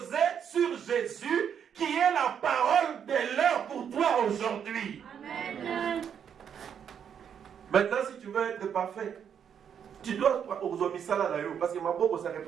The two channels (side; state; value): left; quieter; 8.1 dB